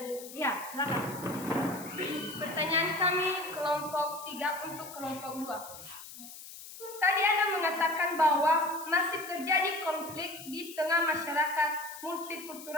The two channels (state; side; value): noise; left; hiss, 14 dB below the sound